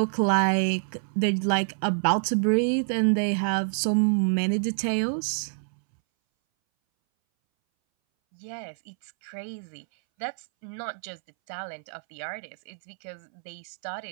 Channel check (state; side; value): silent; left; 60 dB below the other